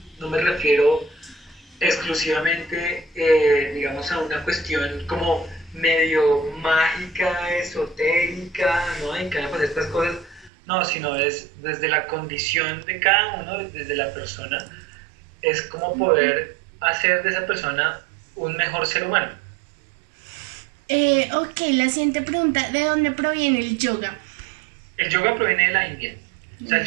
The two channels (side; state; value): left; drops out; at 10.5 s